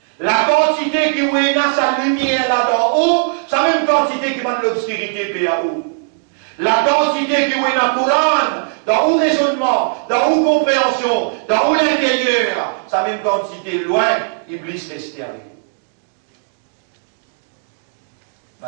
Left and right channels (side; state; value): left; silent; digital silence